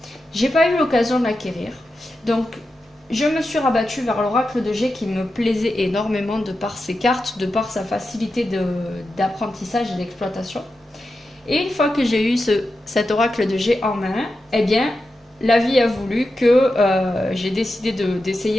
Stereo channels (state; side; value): normal; both; correlation 0.90